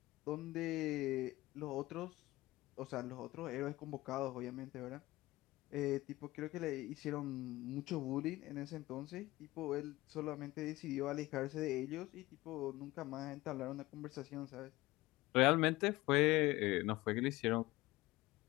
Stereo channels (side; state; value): right; quieter; 19.0 dB